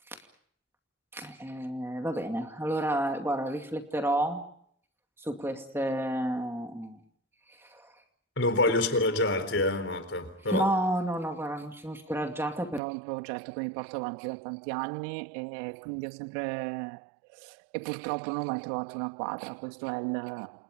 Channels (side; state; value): left; drops out; at 12.8 s